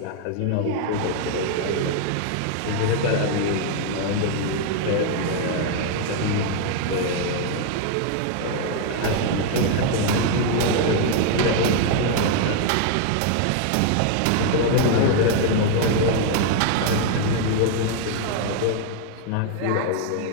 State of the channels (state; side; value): different; both; correlation 0.00